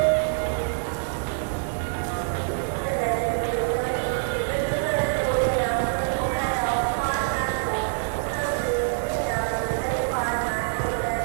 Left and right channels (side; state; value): left; silent; 61 dB below the other